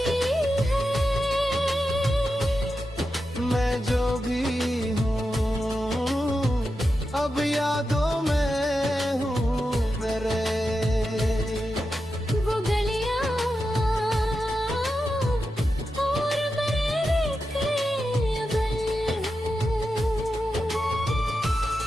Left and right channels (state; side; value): normal; both; correlation 0.89